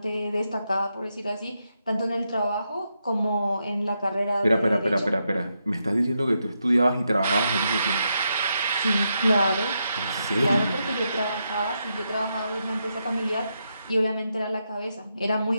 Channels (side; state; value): both; inverted; correlation -0.83